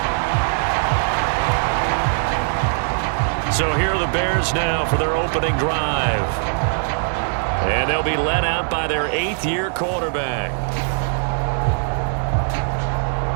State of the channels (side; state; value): left; silent; digital silence